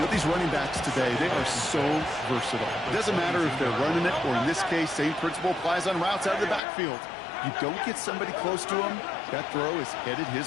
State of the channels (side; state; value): right; drops out; at 6.6 s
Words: these running backs today, they are so versatile. It doesn't matter if they're running it, or in this case, same principle applies on routes out of the backfield. You don't get somebody close to him, that throw is headed